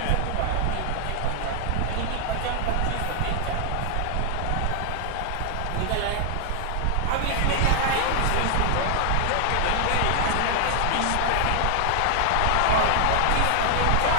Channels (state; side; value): different; both; correlation 0.00